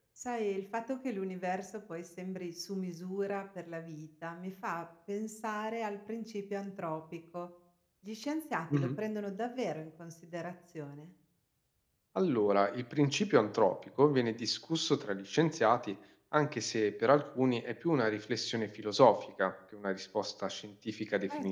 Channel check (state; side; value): identical; both; correlation 1.00